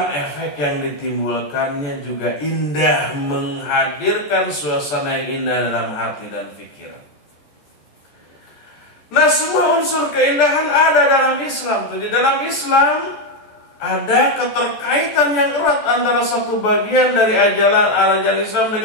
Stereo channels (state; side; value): late; right; 14 ms